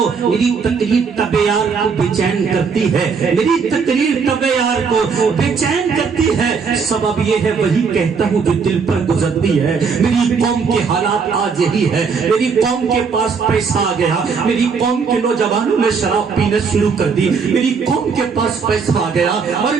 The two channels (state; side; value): quieter; left; 5.5 dB